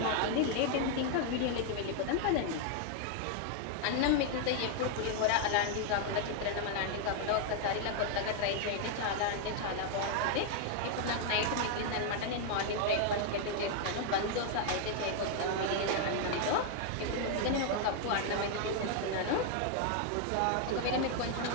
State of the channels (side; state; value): both; different; correlation 0.00